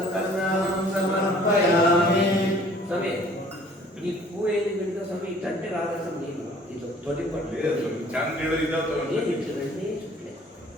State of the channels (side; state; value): both; normal; correlation 0.54